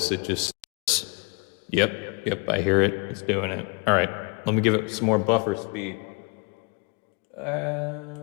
it just, yep, I hear it, it's doing it. All right, let me give it some more buffer speed.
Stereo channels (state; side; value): quieter; right; 33.4 dB